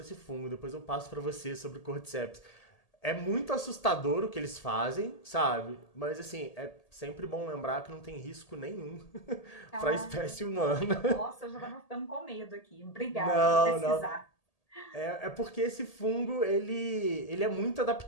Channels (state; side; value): late; right; 1.8 ms